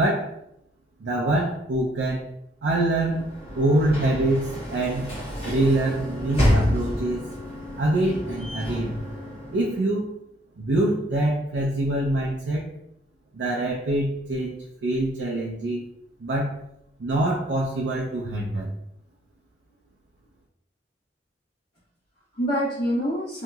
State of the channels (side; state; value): both; normal; correlation 0.64